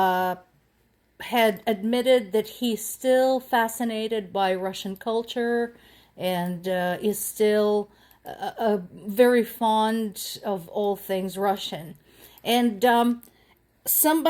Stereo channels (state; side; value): identical; both; correlation 1.00